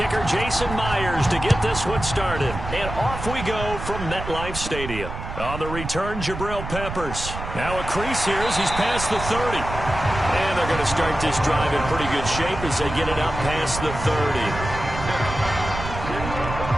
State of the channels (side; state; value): right; noise; rumble, 8 dB below the sound